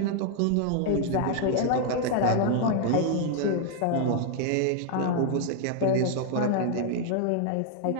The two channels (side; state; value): both; different; correlation 0.00